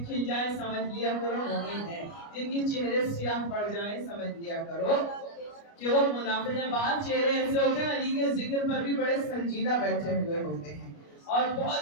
کھل جائے سمجھ لیا کرو مومن ہے, جن کے چہرے سیاہ پڑ جائیں سمجھ لیا کرو کہ وہ منافق ہیں. بعض چہرے ایسے ہوتے ہیں علی کے ذکر پر بھی بڑے سنجیدہ بیٹھے ہوئے ہوتے ہیں اور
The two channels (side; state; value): right; late; 29 ms